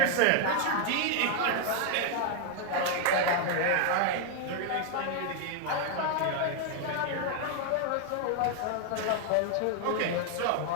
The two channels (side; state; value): both; different; correlation 0.00